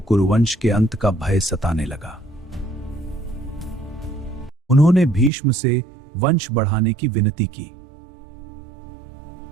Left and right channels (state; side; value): drops out; left; at 5.3 s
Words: के अंत का भय सताने लगा। उन्होंने भीष्म से वंश बढ़ाने की विनती की,